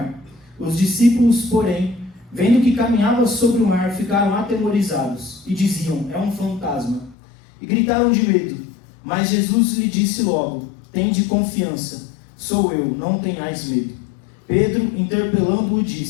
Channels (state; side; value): drops out; right; at 7.2 s